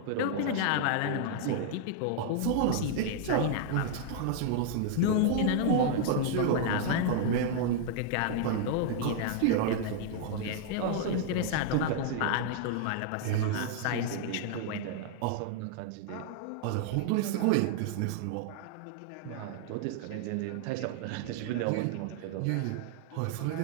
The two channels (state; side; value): different; both; correlation 0.00